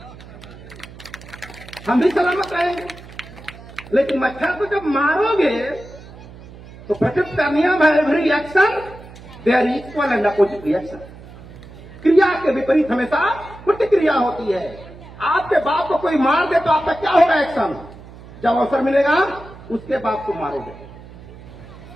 हम भी सलामत रहेंगे। लेकिन मच्छर को जब मारोगे तो प्रकृति का नियम है, every action there equal and opposite reaction. क्रिया के विपरीत हमेशा प्रतिक्रिया होती है। आपके बाप को कोई मार दे तो आपका क्या होगा एक्शन? जब अवसर मिलेगा उसके बाप को मारोगे,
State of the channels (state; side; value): noise; right; hum, 18 dB below the sound